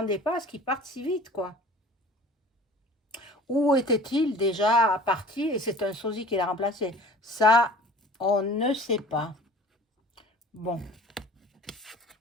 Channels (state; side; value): normal; both; correlation 0.45